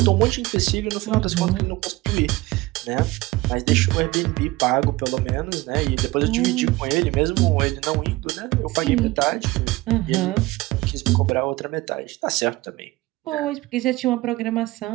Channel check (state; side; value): quieter; left; 20.1 dB